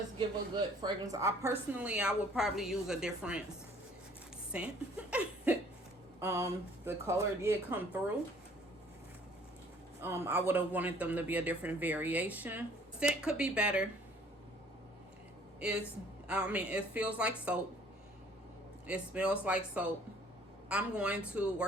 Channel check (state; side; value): normal; both; correlation 0.56